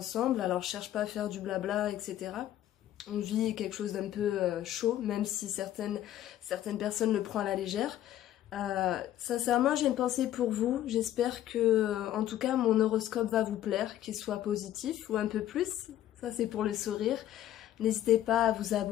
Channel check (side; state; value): right; quieter; 12.5 dB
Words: Alors je cherche pas à faire du blabla, etc. On vit quelque chose d'un peu chaud, même si certaines personnes le prennent à la légère. Sincèrement, j'ai une pensée pour vous. J'espère que, en tout cas, mon horoscope va vous plaire, qu'il soit positif ou un peu plus. Ça, c'est pour le sourire. N'hésitez pas à vous